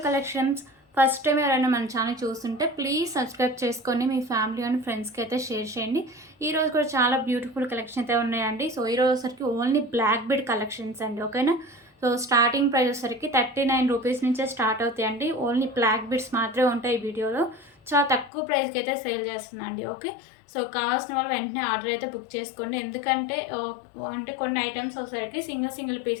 collections. First time ఎవరైనా మన channel చూస్తుంటే ప్లీజ్ సబ్స్క్రైబ్ చేసుకొని మీ ఫ్యామిలీ అండ్ ఫ్రెండ్స్కి అయితే షేర్ చేయండి. ఈరోజు కూడా చాలా బ్యూటిఫుల్ కలెక్షన్ అయితే ఉన్నాయండి. సో ఈరోజు వచ్చరికి ఓన్లీ బ్లాక్ బీడ్ కలెక్షన్స్ అండి, ఓకేనా. సో స్టార్టింగ్ ప్రైస్ వచ్చరికి 39 రూపీస్ నుంచే స్టార్ట్ అవుతాయండి. ఓన్లీ బ్లాక్ బీడ్స్ మాత్రమే ఉంటాయి ఈ వీడియోలో. చాలా తక్కువ ప్రైస్కి అయితే సేల్ చేస్తున్నా అండి, ఓకే. సో కావాల్సిన వాళ్ళు వెంటనే ఆర్డర్ అయితే బుక్ చేసుకోండి. ఎందుకంటే అంటే కొన్ని ఐటమ్స్ వచ్చేసరికి సింగిల్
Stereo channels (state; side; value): drops out; right; at 18.3 s